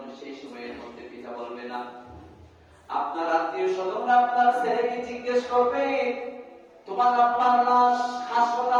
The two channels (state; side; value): identical; both; correlation 1.00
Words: সেই সময়ের মধ্যে পিতা বলবে না। আপনার আত্মীয় স্বজনরা আপনার ছেলেকে জিজ্ঞেস করবে, তোমার আব্বার লাশ